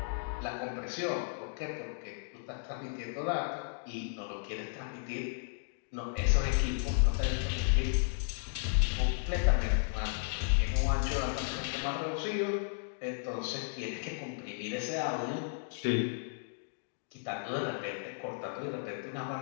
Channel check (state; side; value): silent; right; digital silence